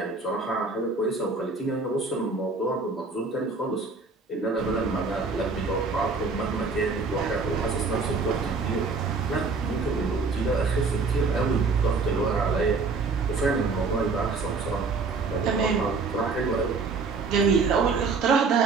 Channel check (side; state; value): left; quieter; 4.3 dB